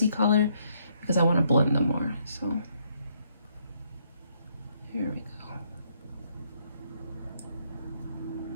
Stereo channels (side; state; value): both; inverted; correlation -0.72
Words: color because I want to blend them more. So here we